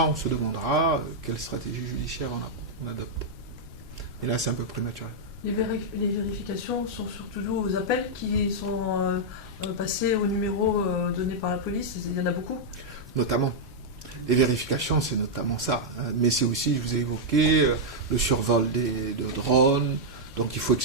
on se demandera quelle stratégie judiciaire on adopte. Et là, c'est un peu prématuré. Les vérifications sont surtout dues aux appels qui sont passés au numéro donné par la police. Il y en a beaucoup. Notamment. Les vérifications, c'est notamment ça. Mais c'est aussi, je vous ai évoqué, le survol de drones. Donc il faut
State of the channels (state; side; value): normal; both; correlation -0.05